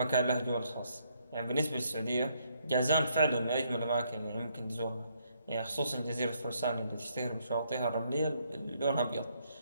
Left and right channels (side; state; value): both; inverted; correlation -0.72